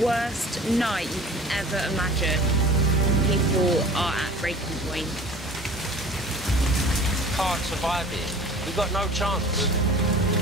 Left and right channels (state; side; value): normal; both; correlation 0.43